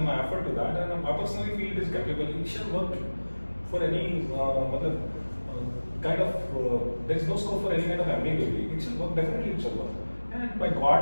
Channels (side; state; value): both; inverted; correlation -1.00